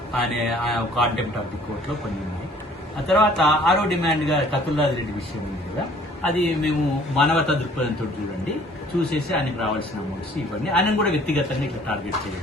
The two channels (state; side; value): normal; both; correlation 0.55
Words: కాంటెంప్ట్ ఆఫ్ ది కోర్టులో కొన్ని ఉన్నాయి. ఆ తర్వాత 6వ డిమాండ్గా కతుల్లాది రెడ్డి విషయం ఉంది కదా, అది మేము మానవతా దృక్పథంతో చూసేసి ఆయనకు రావాల్సిన అమౌంట్స్ ఇవన్నీ ఆయన కూడా వ్యక్తిగతంగా ఇట్లా టార్గెట్ చేయాలి.